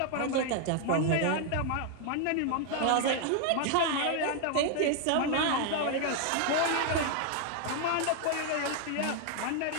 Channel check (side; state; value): both; different; correlation 0.01